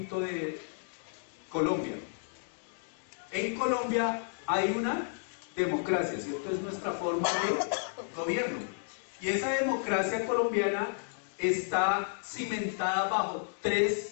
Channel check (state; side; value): silent; right; digital silence